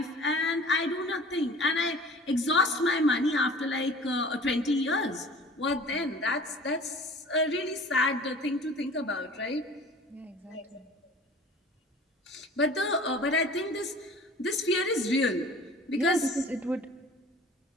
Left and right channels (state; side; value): normal; both; correlation 0.44